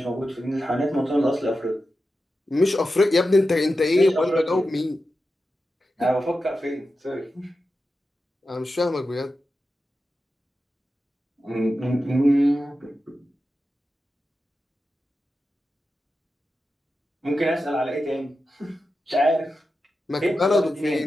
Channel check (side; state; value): both; normal; correlation 0.91